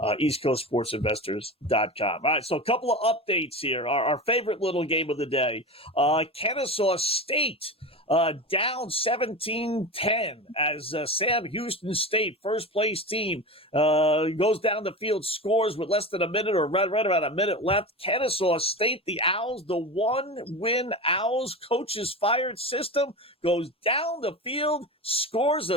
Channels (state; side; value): normal; both; correlation 0.26